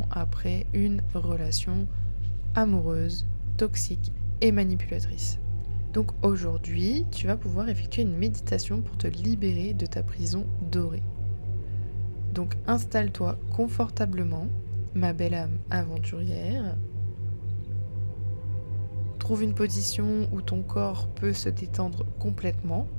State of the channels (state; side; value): inverted; both; correlation -1.00